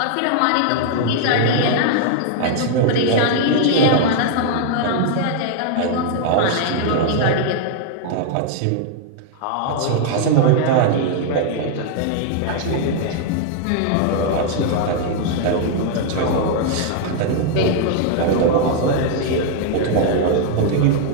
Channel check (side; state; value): both; different; correlation -0.01